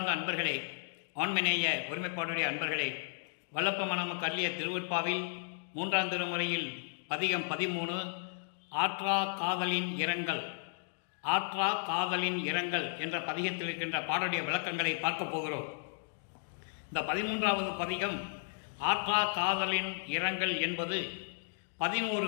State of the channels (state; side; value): silent; right; digital silence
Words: அன்பர்களே, ஆண்மநேய ஒருமைப்பாடுடைய அன்பர்களே, வல்லப்ப நமக்கு அள்ளிய திருவற்பாவில் 3ஆம் திருமுறையில் பதிகம் 13 ஆற்றா காதலின் இரங்கல், ஆற்றா காதலின் இரங்கல் என்ற பதிகத்தில் இருக்கின்ற பாடலுடைய விளக்கங்களை பார்க்க போகிறோம். இந்த 13வது பதிகம் ஆற்றா காதலின் இரங்கல் என்பது